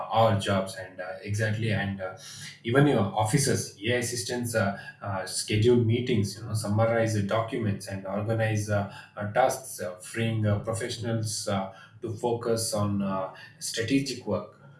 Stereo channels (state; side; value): identical; both; correlation 1.00